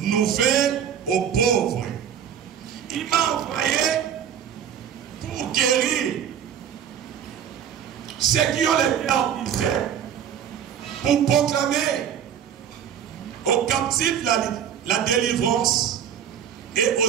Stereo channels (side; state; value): left; quieter; 8.9 dB